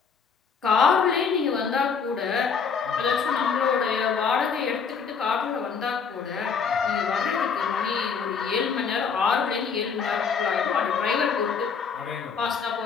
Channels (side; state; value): right; quieter; 6.1 dB